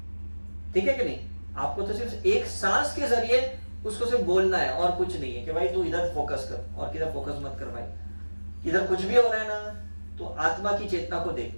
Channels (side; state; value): both; inverted; correlation -1.00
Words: ठीक है कि नहीं? आपको तो सिर्फ एक सांस के जरिए उसको सिर्फ बोलना है और कुछ नहीं है कि भाई तू इधर फोकस कर और किधर फोकस मत कर भाई। इधर कुछ भी हो रहा है ना, तो आत्मा की चेतना को